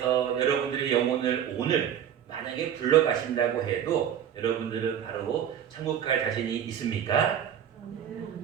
여러분들의 영혼을 오늘 만약에 불러가신다고 해도 여러분들은 바로 천국 갈 자신이 있습니까?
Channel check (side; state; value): left; quieter; 9.4 dB